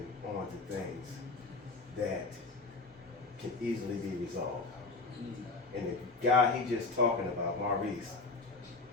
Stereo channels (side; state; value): right; quieter; 3.8 dB